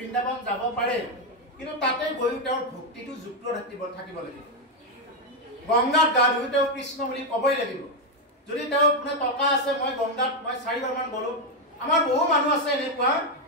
যাব পাৰে কিন্তু তাতে গৈ তেওঁৰ ভক্তিটো যুক্ত থাকিব লাগিব গংগাত গা ধুই তেওঁ কৃষ্ণ বুলি ক'বই লাগিব যদি তেওঁ মানে টকা আছে মই গংগাত মই 4 বাৰমান গ'লো আমাৰ বহু মানুহ আছে এনেকুৱা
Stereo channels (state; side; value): normal; both; correlation 0.04